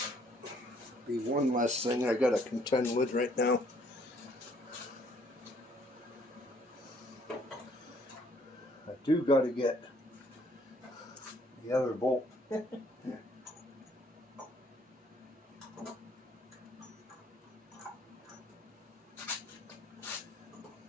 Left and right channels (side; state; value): both; normal; correlation 0.63